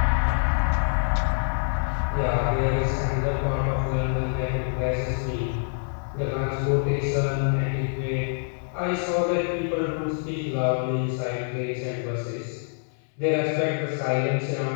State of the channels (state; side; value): silent; right; 61 dB below the other